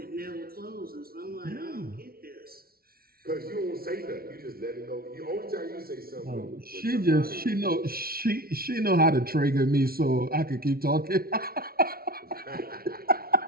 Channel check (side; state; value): left; late; 0.44 ms